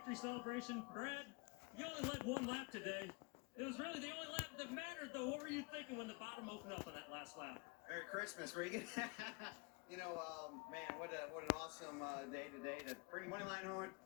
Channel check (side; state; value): right; quieter; 29.6 dB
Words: celebration. Brad, you only led one lap today. It was really the only lap that mattered, though. What were you thinking when the bottom opened up on that last lap? Merry Christmas, Regan. Man, what an awesome day today to bring Moneyline home,